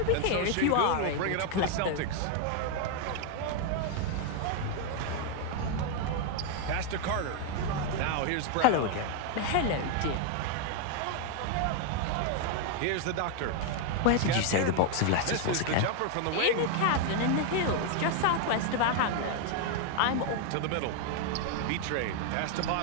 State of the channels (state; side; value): different; both; correlation 0.00